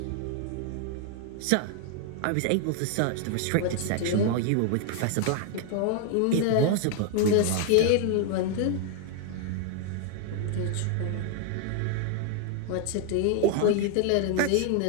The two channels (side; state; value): both; different; correlation 0.00